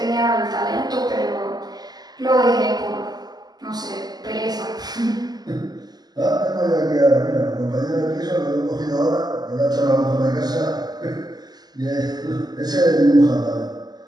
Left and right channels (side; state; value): left; late; 0.20 ms